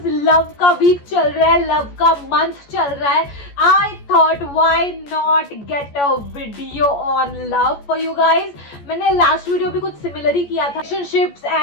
love का week चल रहा है, love का month चल रहा है, I thought why not get a video on love for you guys. मैंने last video भी कुछ similar ही किया था relationships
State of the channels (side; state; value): right; late; 14 ms